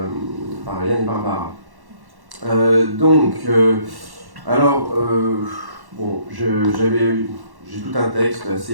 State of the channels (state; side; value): late; left; 1.1 ms